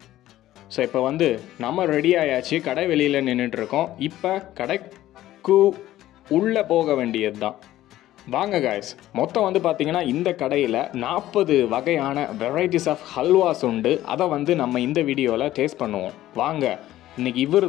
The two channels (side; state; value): right; quieter; 14.4 dB